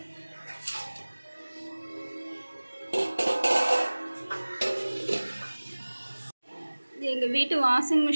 எங்கள் வீட்டு வாஷிங்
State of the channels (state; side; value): inverted; both; correlation -1.00